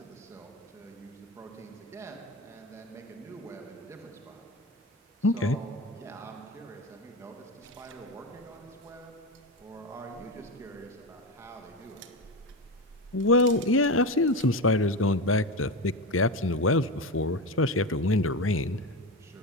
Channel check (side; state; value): both; normal; correlation 0.19